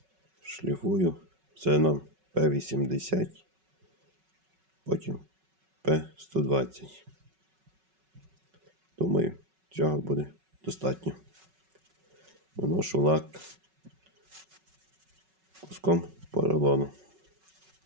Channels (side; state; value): left; late; 5.3 ms